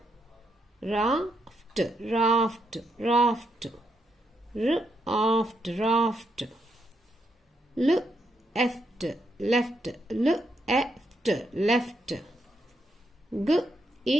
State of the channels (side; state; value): both; normal; correlation 0.79